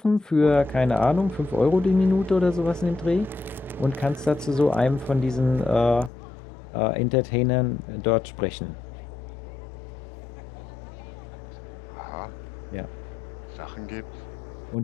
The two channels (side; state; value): right; drops out; at 6.1 s